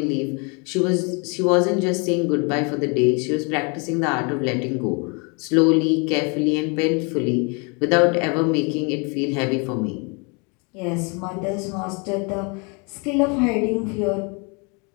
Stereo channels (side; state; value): right; quieter; 32.8 dB